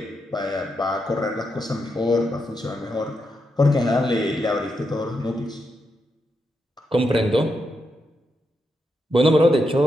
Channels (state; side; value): normal; both; correlation 0.84